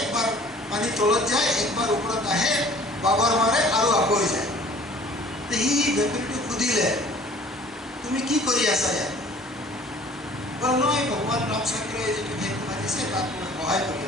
একবাৰ পানী তলত যায়, একবাৰ ওপৰত আহে, বাগৰ মাৰে আৰু আকৌ যায়। সি ভেকুলীটো সুধিলে, তুমি কি কৰি আছা ইয়াত? বোলে নহয়, ভগৱান ৰামচন্দ্ৰই যিটো সেতু সাজিছে তাত মই সহায় কৰি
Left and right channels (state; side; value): normal; both; correlation 0.51